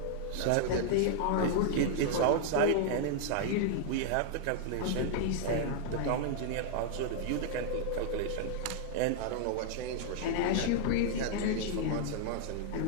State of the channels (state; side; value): different; both; correlation -0.01